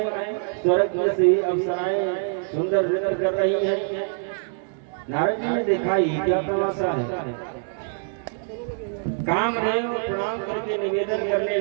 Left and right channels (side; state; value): left; silent; digital silence